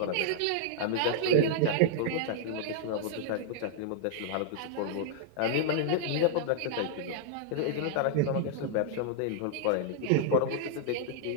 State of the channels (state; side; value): different; both; correlation -0.01